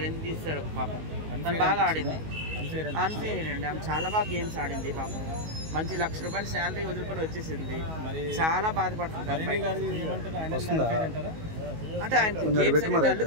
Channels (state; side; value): late; left; 19 ms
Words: ఎందుకు తీస్తారు పాపం. తను బాగా ఆడింది, అన్ఫేర్ అండి. ఆమె చాలా బాగా గేమ్స్ ఆడింది పాపం. మంచి ₹1,00,000 శాలరీ వదులుకొని వచ్చేసింది, చాలా బాధపడుతుంది. అంటే ఆయన